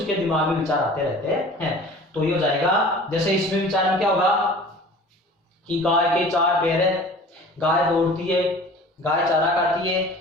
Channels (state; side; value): normal; both; correlation 0.43